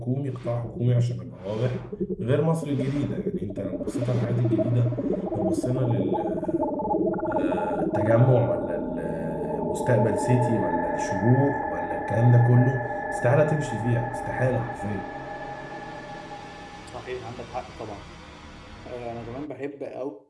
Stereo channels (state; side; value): identical; both; correlation 1.00